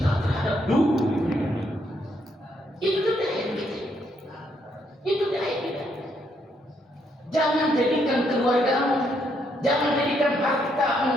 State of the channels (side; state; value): both; normal; correlation 0.74